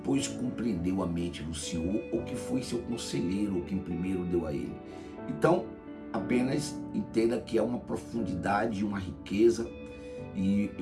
compreendeu a mente do Senhor, ou que foi seu conselheiro, ou quem primeiro deu a ele? Então, apenas entenda que é uma profundidade, uma riqueza, e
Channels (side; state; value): both; identical; correlation 1.00